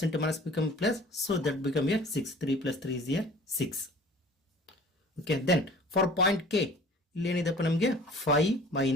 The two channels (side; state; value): both; normal; correlation 0.47